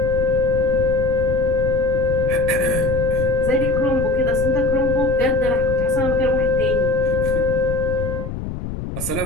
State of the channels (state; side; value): noise; left; rumble, 6 dB below the sound